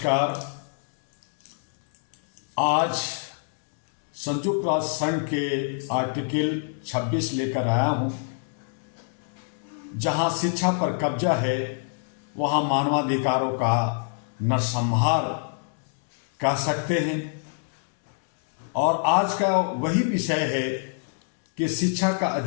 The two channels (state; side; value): silent; right; digital silence